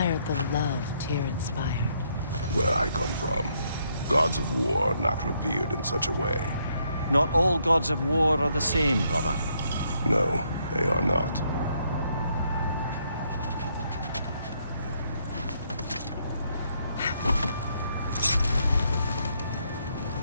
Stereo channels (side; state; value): both; inverted; correlation -0.73